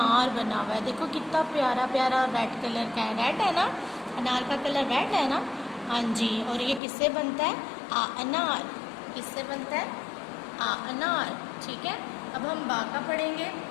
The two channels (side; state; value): right; drops out; at 6.8 s